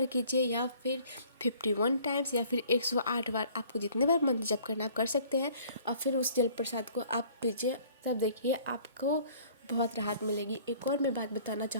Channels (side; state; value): both; inverted; correlation -0.54